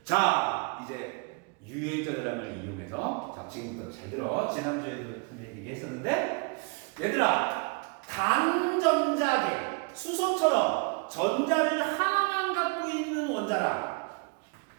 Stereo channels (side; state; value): left; quieter; 33.3 dB